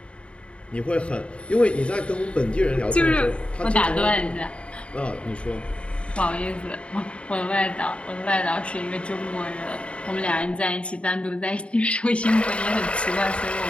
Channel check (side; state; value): right; late; 0.059 ms